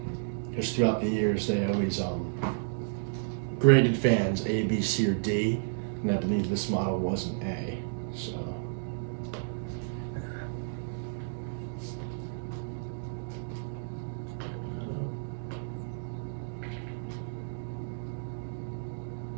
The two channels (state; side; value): silent; left; digital silence